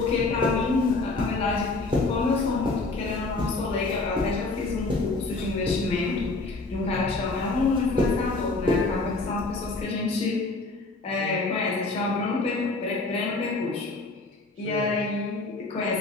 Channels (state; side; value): quieter; right; 3.4 dB